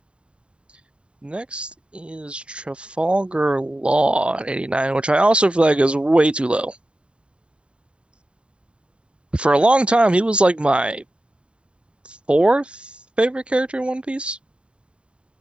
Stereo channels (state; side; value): late; left; 0.054 ms